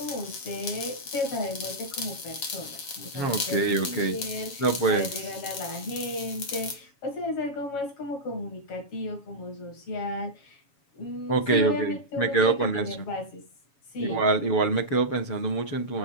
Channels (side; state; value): right; late; 7.2 ms